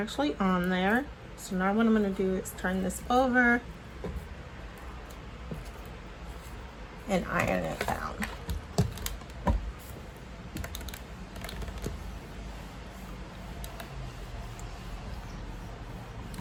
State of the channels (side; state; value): both; identical; correlation 1.00